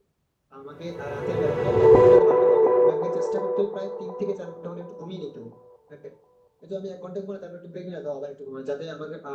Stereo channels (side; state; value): both; identical; correlation 1.00